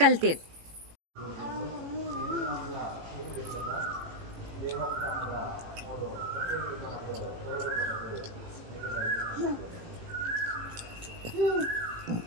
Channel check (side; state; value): left; late; 18 ms